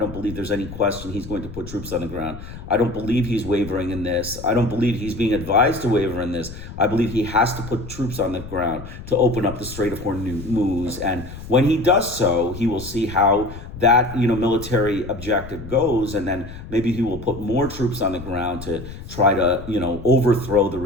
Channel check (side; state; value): left; noise; rumble, 12 dB below the sound